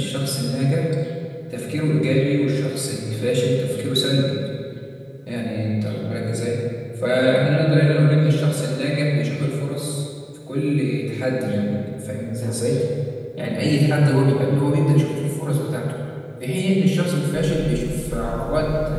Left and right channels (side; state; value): both; identical; correlation 1.00